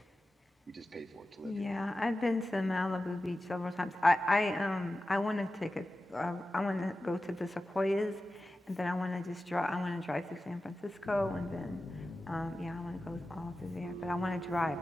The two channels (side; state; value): both; normal; correlation 0.94